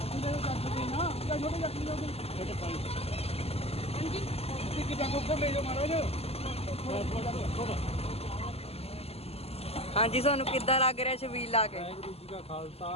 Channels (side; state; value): right; late; 0.29 ms